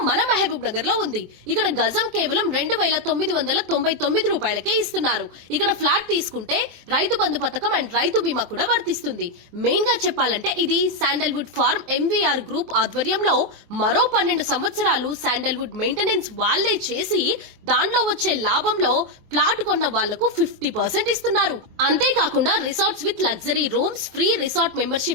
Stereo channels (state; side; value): late; left; 24 ms